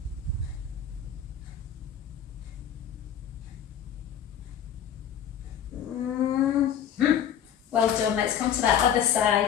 Well done, let's come to that other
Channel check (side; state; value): right; quieter; 8.9 dB